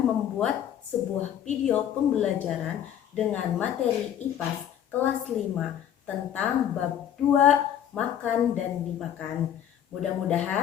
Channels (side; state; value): right; quieter; 10.0 dB